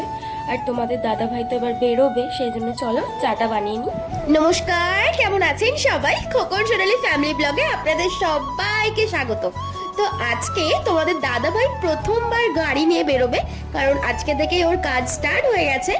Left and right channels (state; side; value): identical; both; correlation 1.00